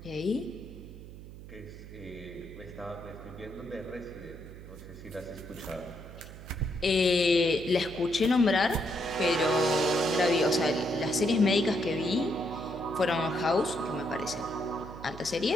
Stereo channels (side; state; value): right; noise; hum, 15 dB below the sound